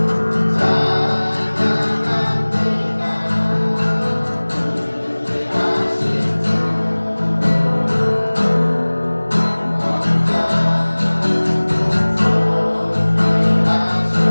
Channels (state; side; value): inverted; both; correlation -1.00